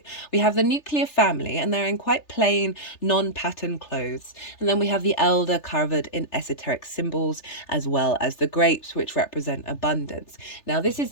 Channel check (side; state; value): right; late; 3.3 ms